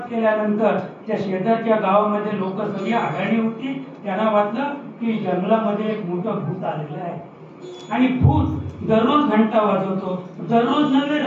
केल्यानंतर त्या शेजारच्या गावामध्ये लोक सगळी आढळणी होती. त्यांना वाटलं की जंगलामध्ये एक मोठं भूत आलेलं आहे आणि भूत दररोज घंटा वाजवतो. दररोज नव्हे,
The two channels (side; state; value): both; identical; correlation 1.00